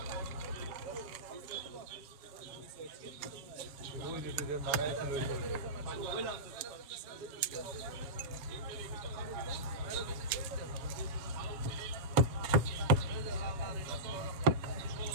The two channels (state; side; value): late; left; 7.1 ms